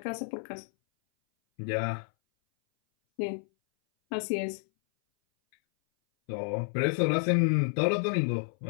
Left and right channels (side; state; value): right; silent; 58 dB below the other